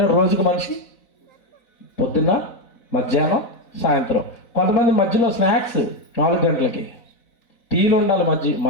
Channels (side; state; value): right; late; 4.1 ms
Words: రోజుకు మనిషి? పొద్దున్న, మధ్యాహ్నం, సాయంత్రం. కొంతమంది మధ్యలో స్నాక్స్ 4 గంటలకి, టీలు ఉండాలి